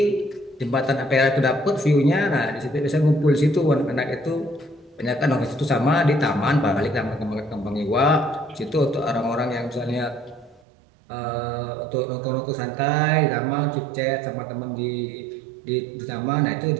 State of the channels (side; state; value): left; drops out; at 10.6 s